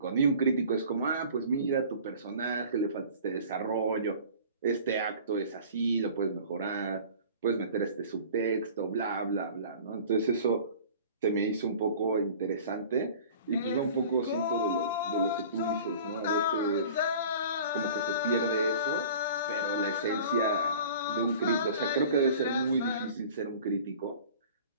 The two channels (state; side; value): inverted; both; correlation -0.44